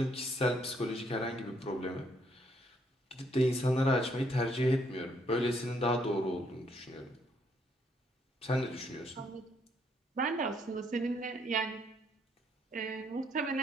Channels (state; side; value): normal; both; correlation 0.70